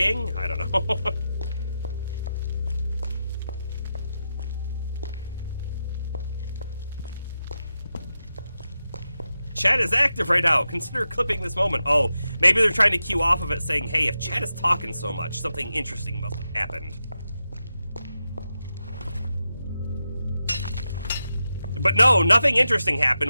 I don't know. Chat is active right now. Consider clipping this moment. Oh, maybe they're trying to cue off of it saying, hey, if chat is talking so much, something interesting must have happened. But no, nothing interesting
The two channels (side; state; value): both; inverted; correlation -0.89